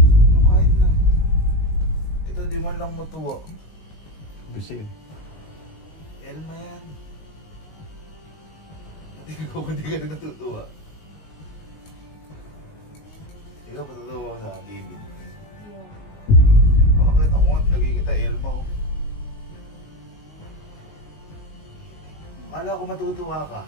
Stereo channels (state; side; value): late; right; 19 ms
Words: Ano kahit na? Ito di man lang matuwa. Busi yun. Elma yan. Pati ikaw kung di ka na natutuwa. Ikaw patutuwa ko sa David. Bakit ako nga nagkikita Elma oh. Akala ko matutuwa ka.